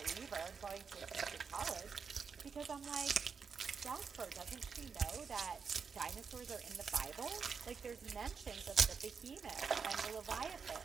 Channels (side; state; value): left; quieter; 5.8 dB